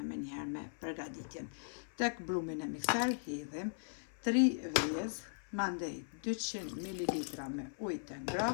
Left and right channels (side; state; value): right; silent; 52 dB below the other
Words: me njëherë me përgatitjen. Tek brumin e mikser hedhim 3 vezë, mandej 200 ml me ujë të